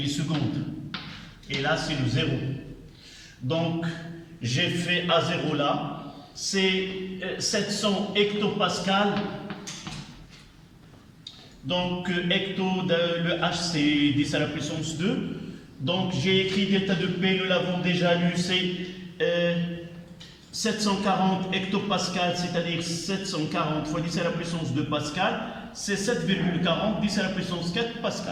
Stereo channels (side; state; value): both; identical; correlation 1.00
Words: et là c'est le 0. Donc j'ai fait A0 là, c'est 700 hectopascales. Donc hecto, le H c'est 10 à la puissance 2. Donc j'ai écrit delta de P, nous l'avons déjà lu, c'est 740 hectopascales, c'est-à-dire 740 fois 10 à la puissance 2 pascal, c'est 7,40, 10 à la puissance 4